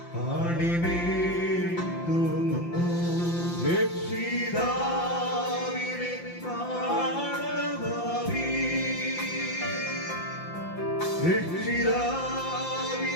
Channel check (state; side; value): late; right; 5.8 ms